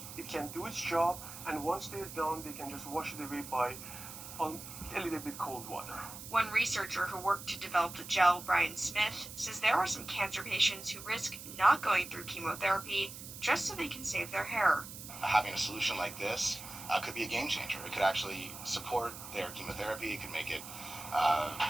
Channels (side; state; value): right; noise; hiss, 12 dB below the sound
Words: It can do its job, and once they're done, they can just wash it away by a little bit cold water. One researcher who worked to develop the gel, Brian Smith, says there are some cancer patients who risk not going through chemotherapy just so they can save their hair. Having a solution like this could be a game changer. It could actually support their chemotherapy. It could make it